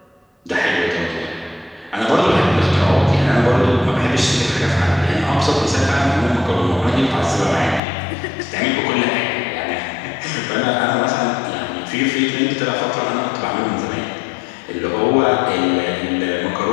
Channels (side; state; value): right; drops out; at 7.8 s